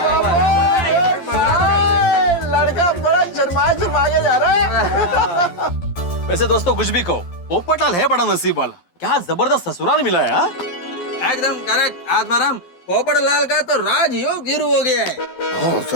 लड़का बड़ा शर्मा के जा रहा है। वैसे दोस्तों, कुछ भी कहो, पोपटलाल है बड़ा नसीब वाला। क्या जबरदस्त ससुराल मिला है। हाँ? एकदम करेक्ट आत्माराम। पोपटलाल का तो राजयोग शुरू हो गया है। हाँ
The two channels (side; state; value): right; late; 12 ms